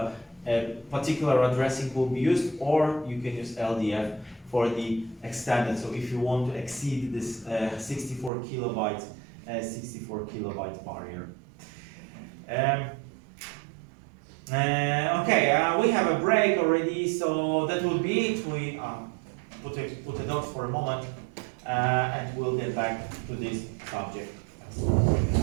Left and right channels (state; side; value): drops out; left; at 8.3 s